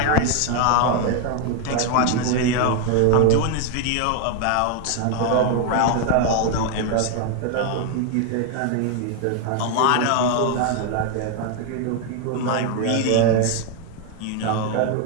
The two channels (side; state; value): both; different; correlation 0.01